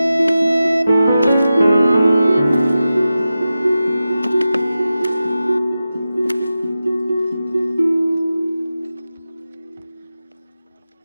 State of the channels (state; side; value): inverted; both; correlation -0.93